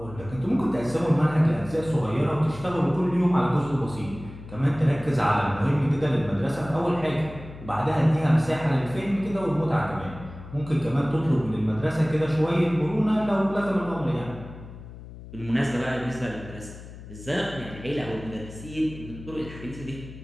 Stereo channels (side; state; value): left; noise; hum, 15 dB below the sound